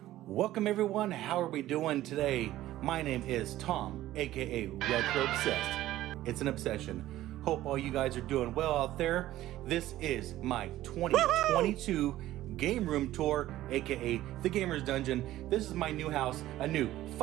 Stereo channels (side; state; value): left; quieter; 14.8 dB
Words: Welcome, everyone. How are we doing today? My name is Tom, aka Retro Obsessed. It's an obsession. Hope all you guys are doing well out there. This is my 2022 Game Room Tour, aka the Gamer's Dungeon. This is my new house, a new